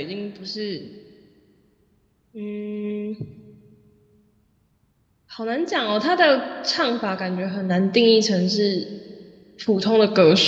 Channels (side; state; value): both; identical; correlation 1.00